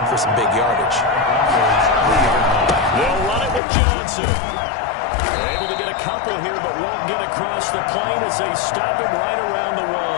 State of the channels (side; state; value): right; drops out; at 3.6 s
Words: for some big yardage. They'll run it with Johnson. They're able to get a couple here, but won't get across the plane as they stop him right around the